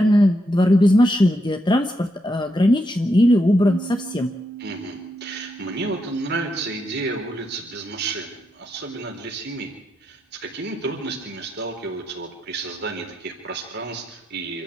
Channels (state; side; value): normal; both; correlation 0.82